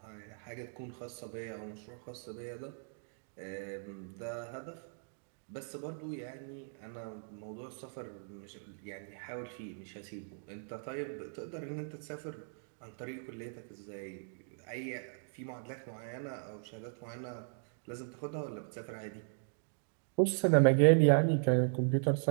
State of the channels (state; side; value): silent; left; digital silence